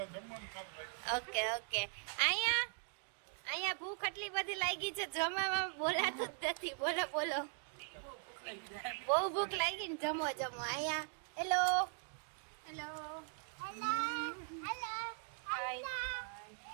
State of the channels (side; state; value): left; silent; 51 dB below the other